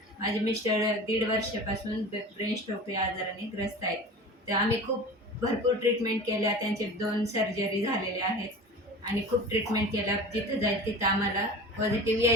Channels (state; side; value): normal; both; correlation 0.36